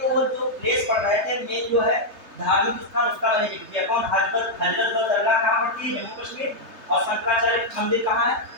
वो जो प्लेस पढ़ रहे थे मेन जो है धार्मिक स्थान, उसका मैंने जिक्र किया, कौन, हजरत बल दरगाह कहाँ पड़ती है, जम्मू कश्मीर, और शंकराचार्य मंदिर कहाँ है,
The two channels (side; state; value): left; late; 3.3 ms